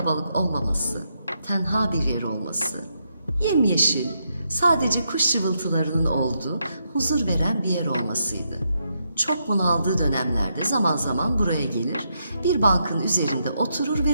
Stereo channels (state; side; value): inverted; both; correlation -0.80